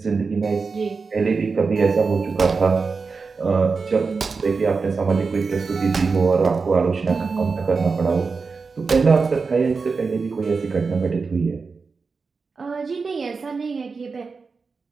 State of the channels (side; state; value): left; quieter; 4.7 dB